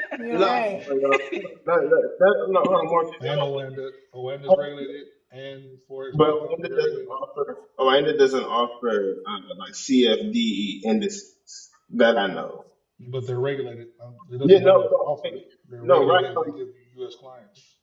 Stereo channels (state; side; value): identical; both; correlation 1.00